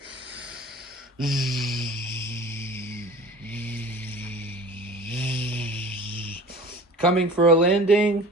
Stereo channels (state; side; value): normal; both; correlation 0.41